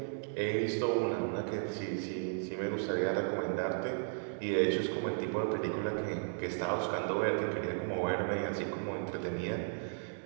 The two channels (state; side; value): silent; left; digital silence